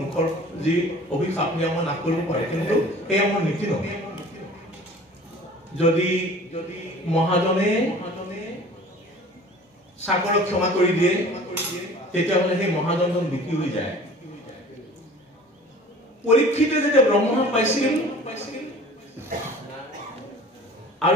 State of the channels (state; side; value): normal; both; correlation 0.45